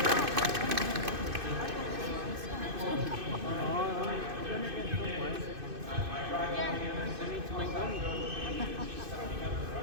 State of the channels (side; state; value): left; late; 2.5 ms